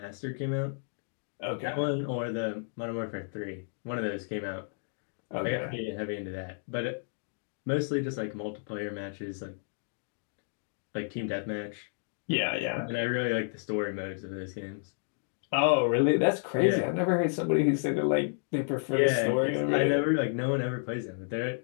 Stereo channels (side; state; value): right; silent; digital silence